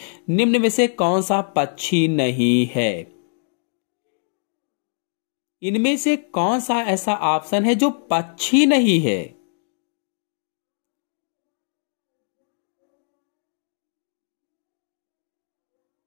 निम्न में से कौन सा पक्षी नहीं है? इनमें से कौन सा ऐसा ऑप्शन है जो पक्षी नहीं है?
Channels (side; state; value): right; silent; digital silence